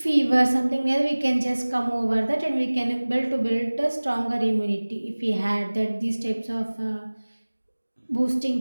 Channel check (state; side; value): inverted; both; correlation -1.00